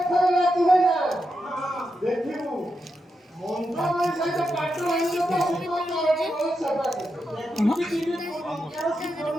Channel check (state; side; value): normal; both; correlation 0.86